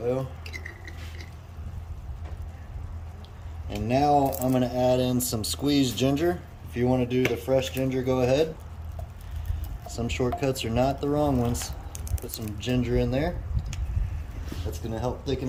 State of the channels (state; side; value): identical; both; correlation 1.00